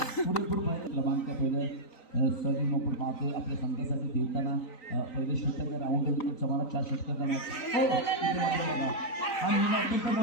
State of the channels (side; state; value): right; late; 3.9 ms